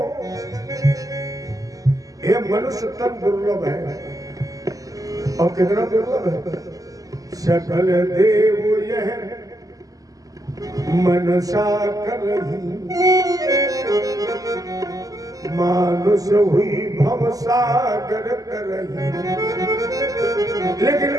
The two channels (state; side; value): late; left; 0.17 ms